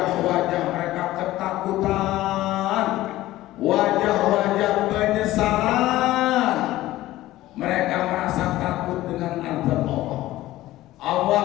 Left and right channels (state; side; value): quieter; right; 16.0 dB